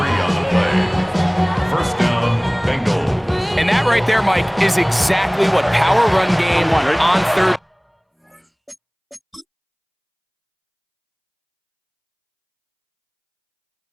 on the play. 1st down, Bengals. And that right there, Mike, is exactly what power run game on 3rd.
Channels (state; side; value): identical; both; correlation 1.00